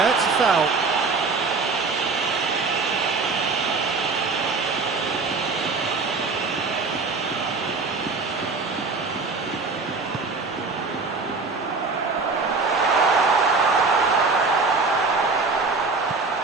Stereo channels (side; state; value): left; quieter; 4.1 dB